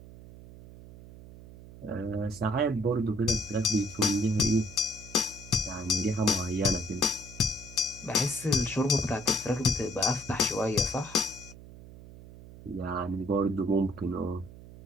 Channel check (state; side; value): noise; right; hum, 17 dB below the sound